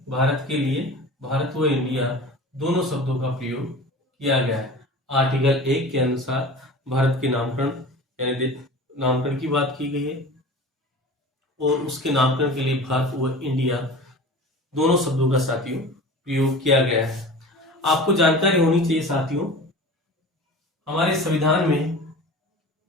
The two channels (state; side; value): normal; both; correlation 0.37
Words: भारत के लिए भारत व इंडिया दोनों शब्दों का प्रयोग किया गया है। आर्टिकल 1 के अनुसार भारत के नामकरण यानी नामकरण की बात की गई है और उसके नामकरण के लिए भारत व इंडिया दोनों शब्दों का साथियों प्रयोग किया गया है। आपको जानकारी होनी चाहिए साथियों, हमारे संविधान में